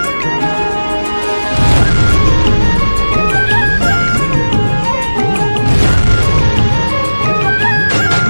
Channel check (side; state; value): both; inverted; correlation -1.00